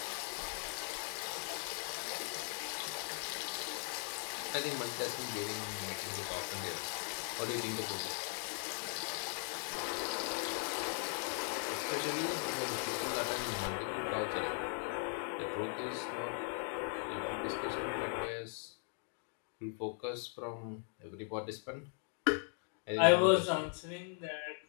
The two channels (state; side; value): silent; right; 52 dB below the other